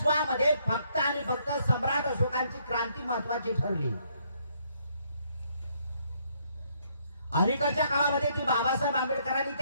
फक्त आणि फक्त सम्राट अशोकांची क्रांती महत्वाची ठरली. अलीकडच्या काळामध्ये ती बाबासाहेब आंबेडकरांनी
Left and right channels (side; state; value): both; inverted; correlation -0.70